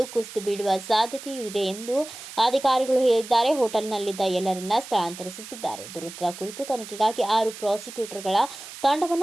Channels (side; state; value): right; noise; hiss, 13 dB below the sound